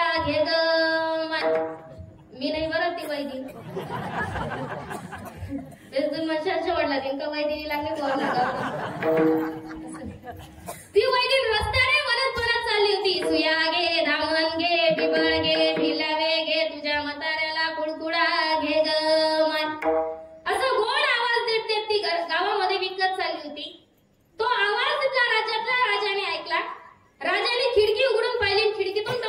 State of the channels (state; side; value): identical; both; correlation 1.00